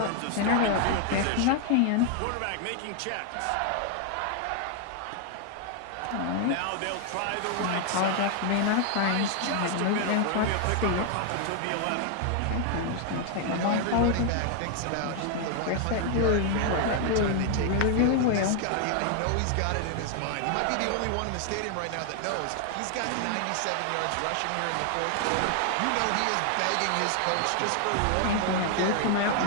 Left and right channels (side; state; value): both; different; correlation 0.00